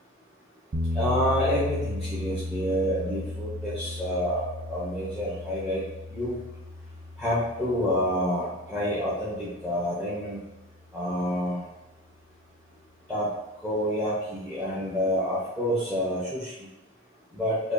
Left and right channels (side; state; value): both; normal; correlation 0.35